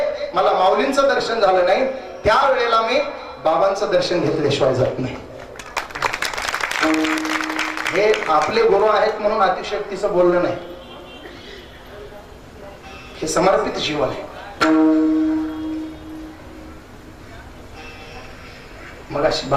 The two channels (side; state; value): both; identical; correlation 1.00